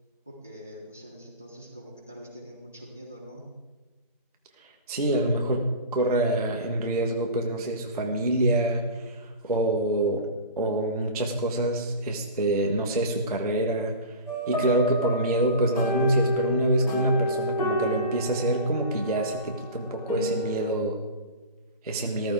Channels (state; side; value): inverted; both; correlation -0.33